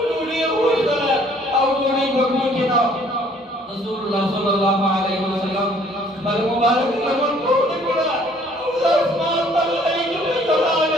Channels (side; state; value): both; normal; correlation 0.59